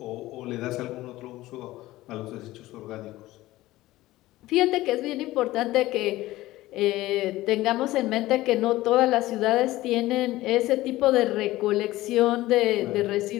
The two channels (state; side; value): quieter; right; 17.1 dB